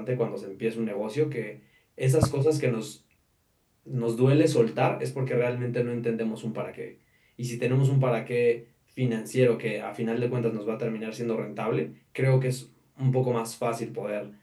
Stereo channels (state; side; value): identical; both; correlation 1.00